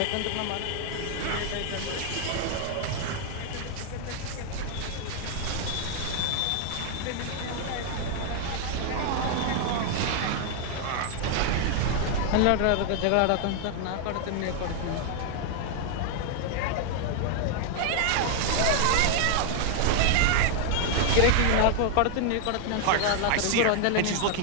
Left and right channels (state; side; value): different; both; correlation 0.00